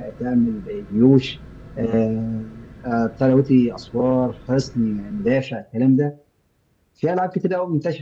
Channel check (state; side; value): identical; both; correlation 1.00